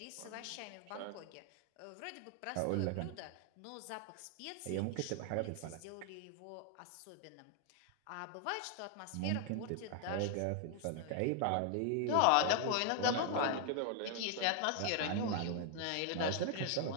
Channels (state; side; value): different; both; correlation 0.00